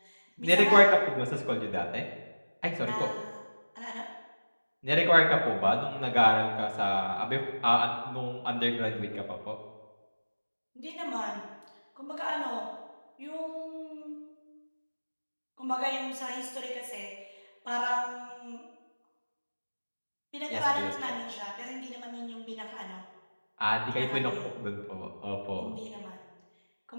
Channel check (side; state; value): both; inverted; correlation -1.00